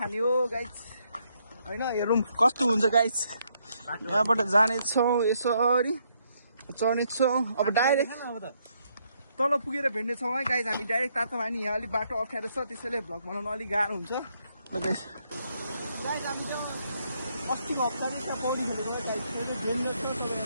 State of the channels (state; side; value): inverted; both; correlation -0.74